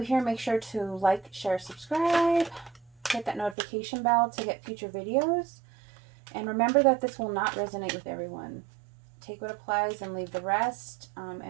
make sure to like, share, subscribe. Hit that notification bell to get future videos. And remember that this will not resonate with everyone. Take what applies and leave the rest.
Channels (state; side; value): drops out; left; at 3.6 s